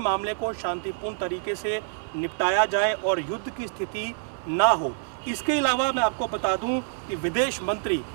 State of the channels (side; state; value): left; silent; 58 dB below the other